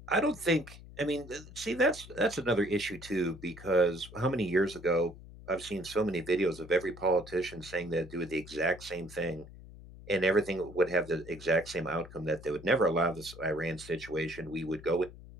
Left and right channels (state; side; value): noise; left; hum, 17 dB below the sound